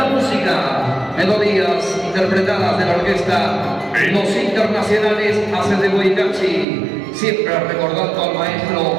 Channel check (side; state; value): left; drops out; at 6.7 s